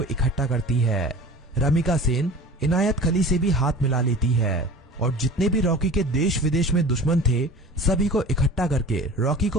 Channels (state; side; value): normal; both; correlation 0.39